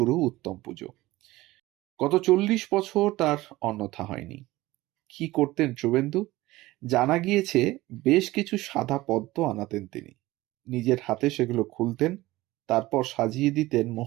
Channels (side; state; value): left; quieter; 18.3 dB